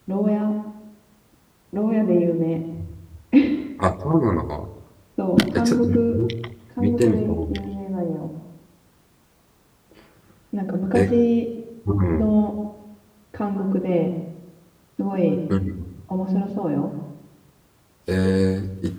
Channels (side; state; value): both; identical; correlation 1.00